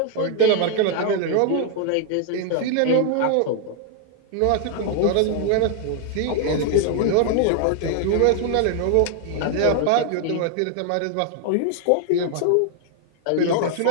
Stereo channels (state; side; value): different; both; correlation 0.00